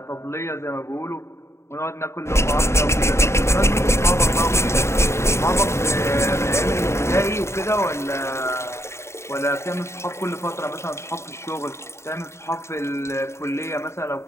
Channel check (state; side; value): late; right; 0.13 ms